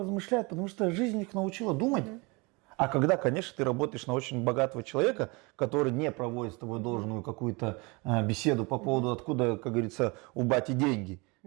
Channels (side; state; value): left; quieter; 27.3 dB